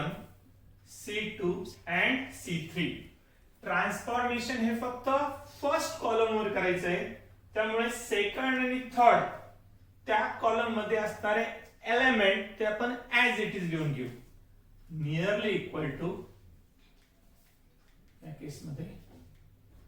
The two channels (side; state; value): both; identical; correlation 1.00